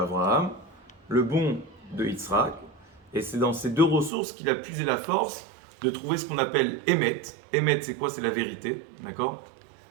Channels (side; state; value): left; drops out; at 4.1 s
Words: le bon de Yitzhak. Et c'est dans ces 2 ressources qu'il a puisé la force de trouver ce qu'on appelle Emet. Emet, c'est quoi? C'est la vérité, d'accord?